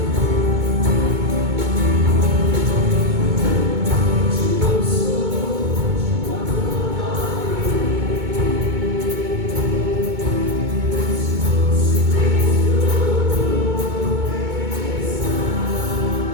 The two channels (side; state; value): left; late; 2.2 ms